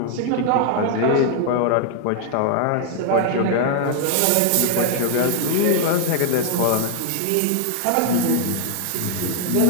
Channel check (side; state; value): both; different; correlation 0.00